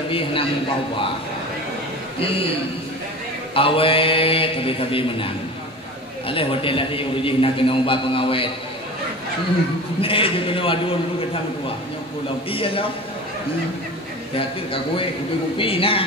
henang bawa. Awet tapi menang. Aleh hotel lagi urus nak kena ubah pengawet. Nih juga kena adun lu kita tua. Nyok pulau iya lah. Yakin kak gue kopi nah.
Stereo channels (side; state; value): both; normal; correlation 0.34